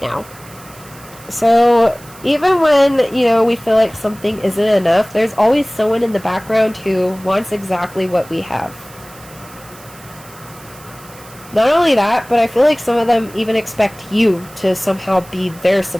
now. So even when, you know, we feel like something isn't enough, there's always someone in the background who wants exactly what we have. Not only that, but I feel like some of them even expect you to somehow be their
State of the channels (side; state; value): right; noise; hiss, 21 dB below the sound